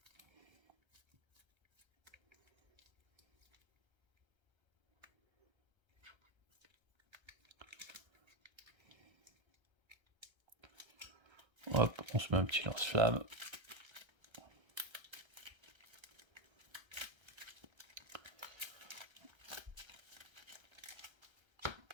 Hop, on se met un petit lance-flamme.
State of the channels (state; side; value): late; left; 1.3 ms